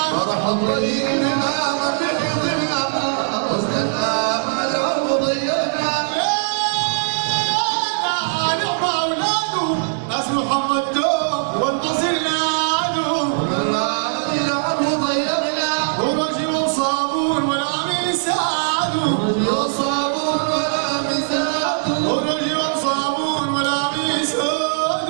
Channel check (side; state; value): left; silent; digital silence